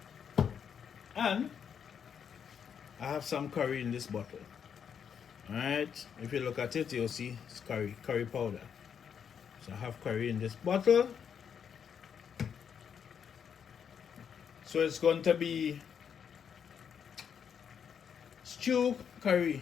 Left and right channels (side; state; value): right; quieter; 7.6 dB